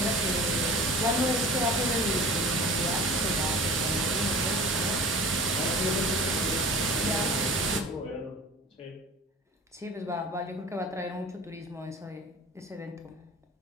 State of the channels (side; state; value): both; normal; correlation 0.40